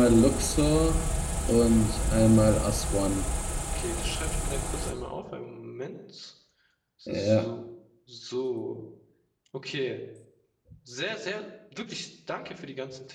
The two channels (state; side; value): identical; both; correlation 1.00